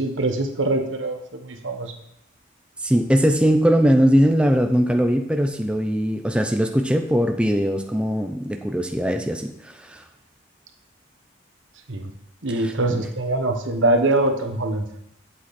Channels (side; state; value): both; normal; correlation 0.70